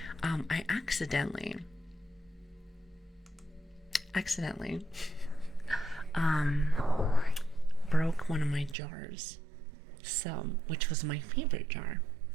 I accidentally broke one of my jars. So, which was my favorite jar.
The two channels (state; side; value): drops out; left; at 8.8 s